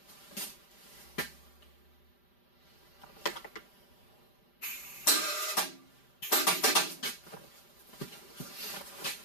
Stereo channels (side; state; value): right; late; 5.1 ms